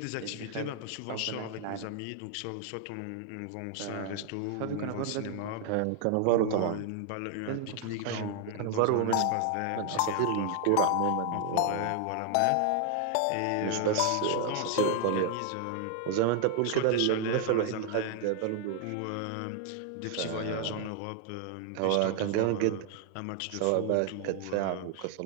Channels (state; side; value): different; both; correlation 0.00